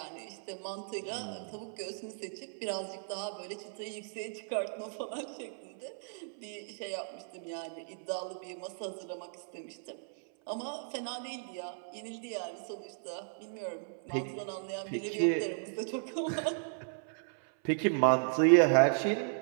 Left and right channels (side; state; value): left; silent; 54 dB below the other